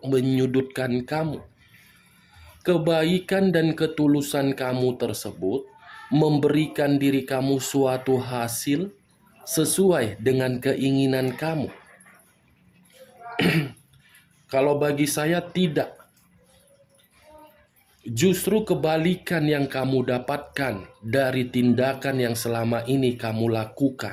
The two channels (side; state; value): both; identical; correlation 1.00